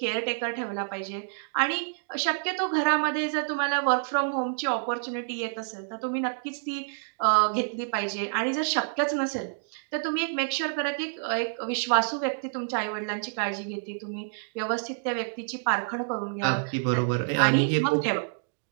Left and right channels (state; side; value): silent; left; digital silence